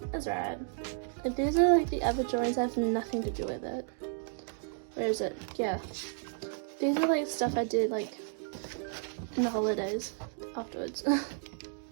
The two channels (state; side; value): silent; left; 56 dB below the other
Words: that's right. Like, these are like the other drawings that have nothing to do with it. Where is it? Yeah. These are like stuff I did like in the holidays afterwards.